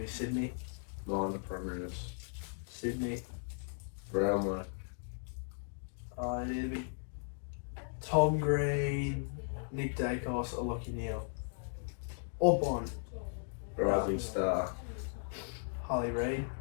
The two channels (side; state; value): right; silent; digital silence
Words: Sydney. Minor premiers. Sydney. Brownlow. It'd be Tom Green, Nick Dacos, or Lockie Neal. Or Bond. Rising Star. Harley Reid.